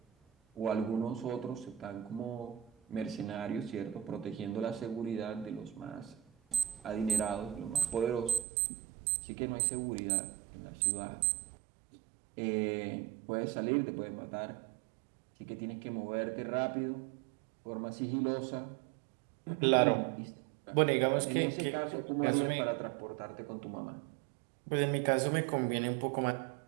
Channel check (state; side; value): drops out; left; at 8.5 s